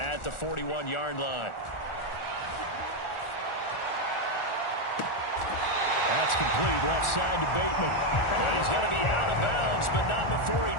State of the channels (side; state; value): right; late; 1.4 ms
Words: the 41-yard line. That's complete, left side to Bateman. And he's going to be out of bounds, but not before he